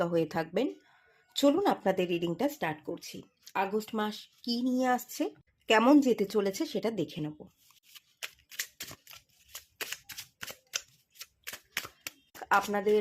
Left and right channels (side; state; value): both; identical; correlation 1.00